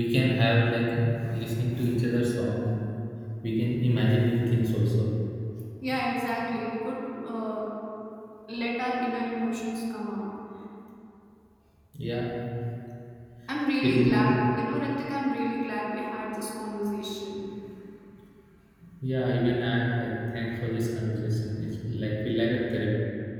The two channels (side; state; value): both; identical; correlation 1.00